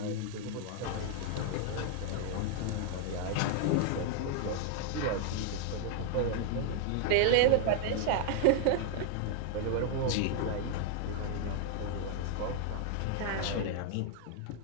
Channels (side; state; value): both; different; correlation 0.00